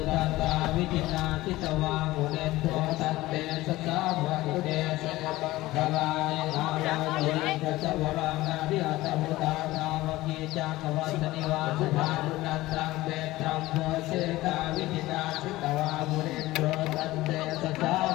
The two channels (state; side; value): quieter; right; 17.9 dB